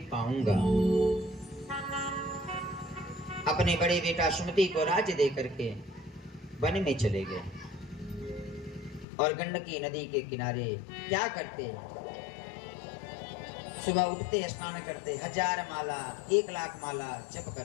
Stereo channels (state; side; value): drops out; right; at 9.1 s